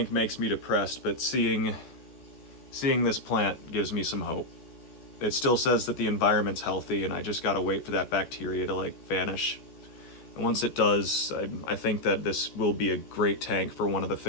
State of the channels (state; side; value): late; right; 14 ms